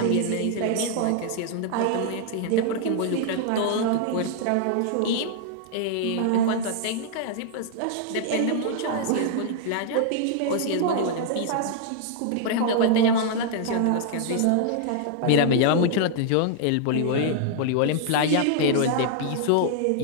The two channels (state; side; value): different; both; correlation -0.01